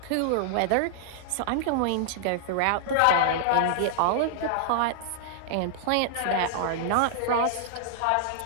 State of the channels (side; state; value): both; different; correlation -0.01